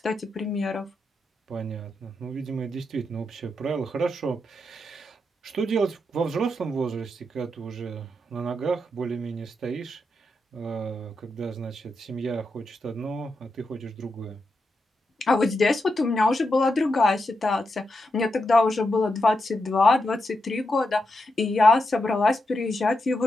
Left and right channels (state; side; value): normal; both; correlation 0.85